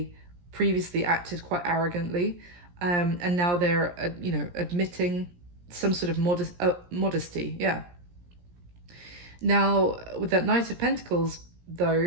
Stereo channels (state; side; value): late; left; 17 ms